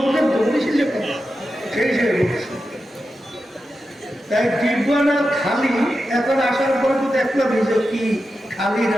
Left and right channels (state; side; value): normal; both; correlation 0.90